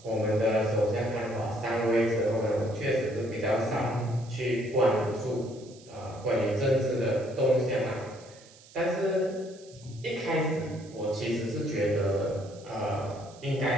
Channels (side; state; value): right; noise; hiss, 23 dB below the sound